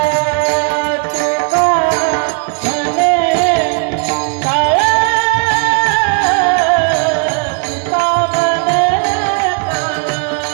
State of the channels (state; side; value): quieter; left; 38.1 dB